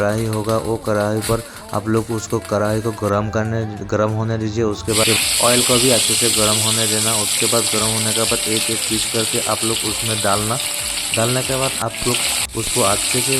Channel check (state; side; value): identical; both; correlation 1.00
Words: होगा वो कढ़ाई पर आप लोग उसको कढ़ाई को गर्म होने दीजिए। उसके बाद ऑयल को भी अच्छे से गर्म होने देना। उसके बाद गर्म होने के बाद एक एक पीस करके आप लोग उसमें डालने के बाद आप लोग उसको अच्छे से